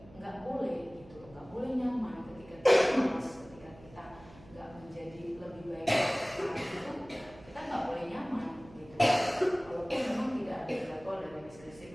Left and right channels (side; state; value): right; noise; hum, 21 dB below the sound